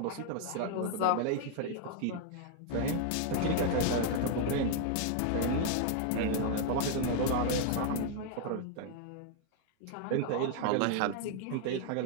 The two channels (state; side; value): different; both; correlation 0.00